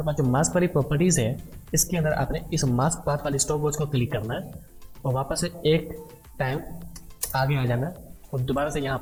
पास जो मास्क वाली प्रॉपर्टीज़ है, इसके अंदर आपने इस मास्क पाथ वाली स्टॉप वॉच को क्लिक करना है और वापस से एक टाइम आगे आ जाना है और दोबारा से यहाँ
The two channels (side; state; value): both; identical; correlation 1.00